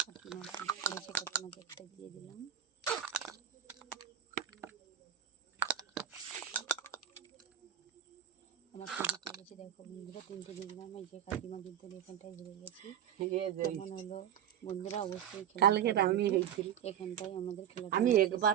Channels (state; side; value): quieter; left; 9.9 dB